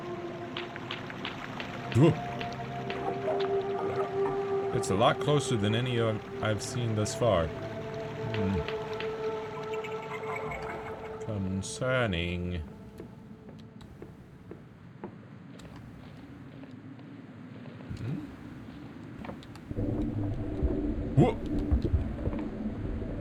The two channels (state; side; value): identical; both; correlation 1.00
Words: Whoa. It's a lot closer than any I've seen thus far. Concerning. Whoa!